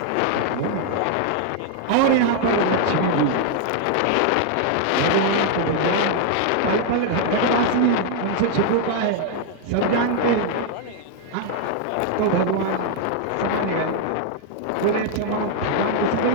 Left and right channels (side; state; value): both; different; correlation 0.00